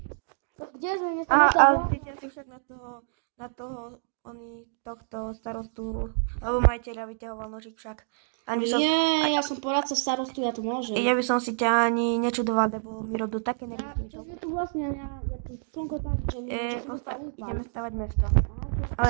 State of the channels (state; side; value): silent; left; digital silence